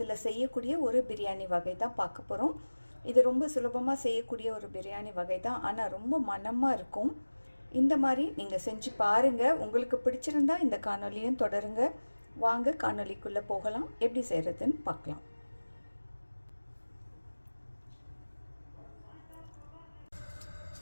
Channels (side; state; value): both; inverted; correlation -1.00